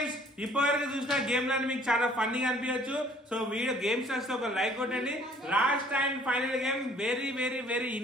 ఇప్పటివరకు చూసిన గేమ్లను మీకు చాలా ఫన్నీగా అనిపించచ్చు. సో వీడియో గేమ్స్ వస్తే ఒక లైక్ కొట్టండి. Last and final game very very very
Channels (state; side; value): normal; both; correlation 0.57